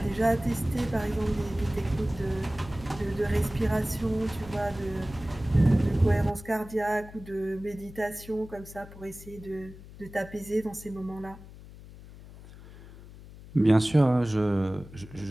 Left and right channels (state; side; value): noise; left; hum, 17 dB below the sound